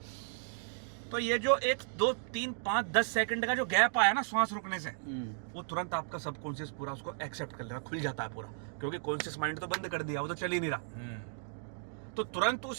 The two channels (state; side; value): silent; left; digital silence